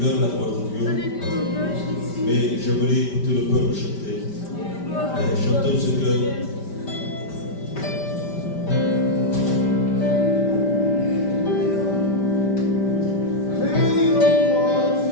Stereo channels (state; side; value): late; right; 5.1 ms